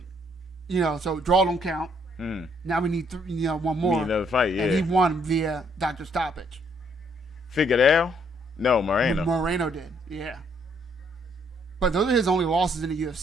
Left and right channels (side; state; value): both; normal; correlation 0.68